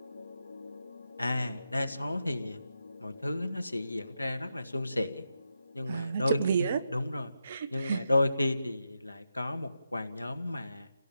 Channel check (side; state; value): both; inverted; correlation -0.86